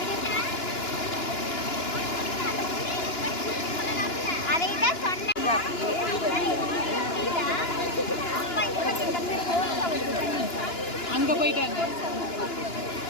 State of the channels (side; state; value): right; late; 2.9 ms